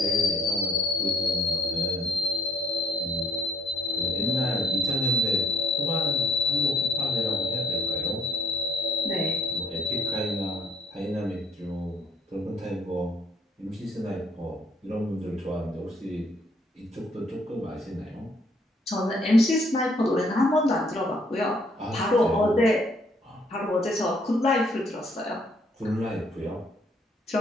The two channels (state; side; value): normal; both; correlation 0.64